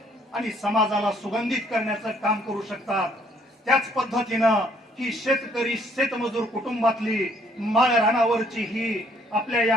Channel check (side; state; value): both; normal; correlation 0.64